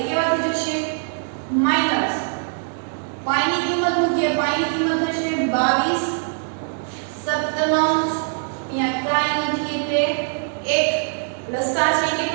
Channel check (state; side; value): silent; left; 61 dB below the other